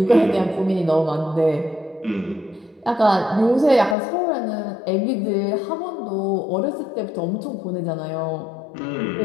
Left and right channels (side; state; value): right; drops out; at 4.0 s